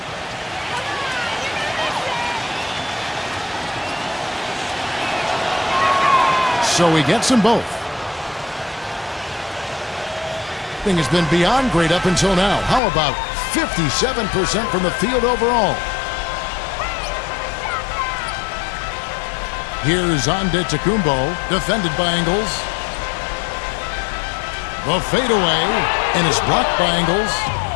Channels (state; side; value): drops out; right; at 12.8 s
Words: So he gets them both. Thing has been beyond great up until now. How about 57% from the field overall? Here's Antetokounmpo, defended by Ingles. The fadeaway, and is blocked by Ingles.